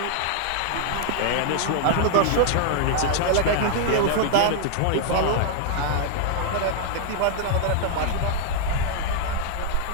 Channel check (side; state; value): both; different; correlation 0.00